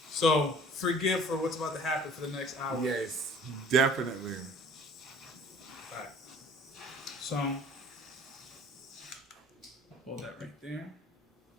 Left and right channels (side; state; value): both; normal; correlation 0.50